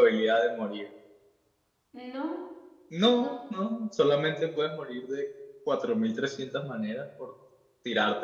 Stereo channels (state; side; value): identical; both; correlation 1.00